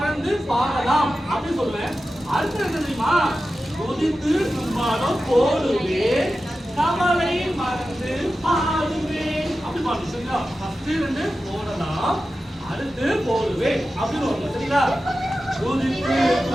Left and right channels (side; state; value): both; normal; correlation 0.93